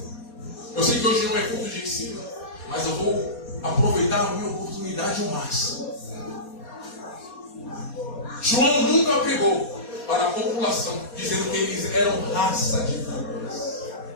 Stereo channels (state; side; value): late; right; 4.2 ms